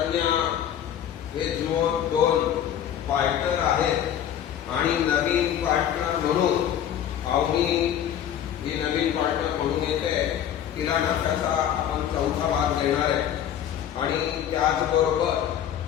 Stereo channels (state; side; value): quieter; right; 10.0 dB